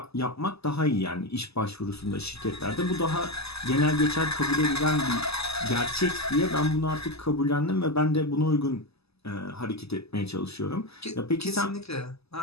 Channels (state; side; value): late; right; 0.79 ms